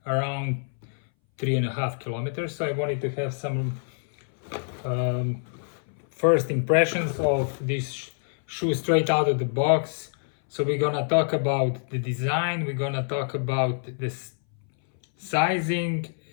around 3.5 kilometers. So I wanted to have some first impressions of this shoe straight out of the box. So we're gonna talk about the design, we're gonna talk about this sizing,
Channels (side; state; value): right; silent; 60 dB below the other